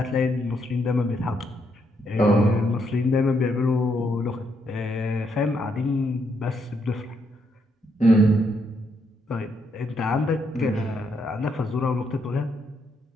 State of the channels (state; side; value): normal; both; correlation 0.76